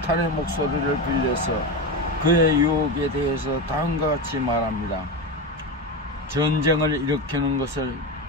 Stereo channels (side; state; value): both; normal; correlation 0.18